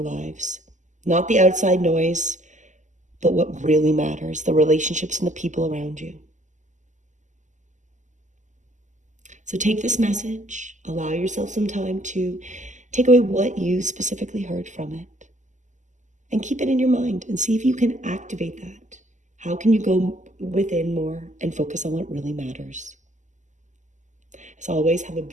lives. Not the outside noise, but what really matters, the relationships and the people around you. So take this message, allow yourself some time to take away what you specifically heard from it, and keep it in your mind and see if you can activate that. How can you go within more and focus on what really matters? As always, have a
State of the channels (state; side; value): late; left; 0.35 ms